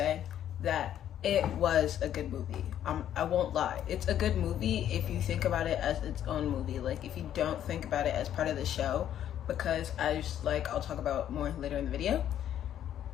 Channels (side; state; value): right; quieter; 10.7 dB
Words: that it was a good movie. I won't lie. It's a good movie if you think about it as its own movie. Like, if you don't think about it as part of the show, because I'll talk about more later in the video.